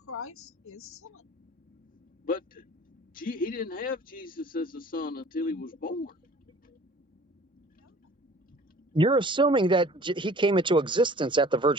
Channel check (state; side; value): normal; both; correlation 0.48